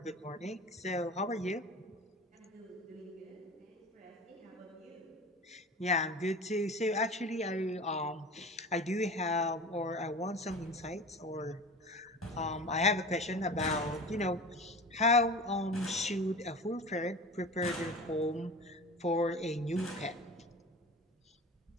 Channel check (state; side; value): normal; both; correlation 0.35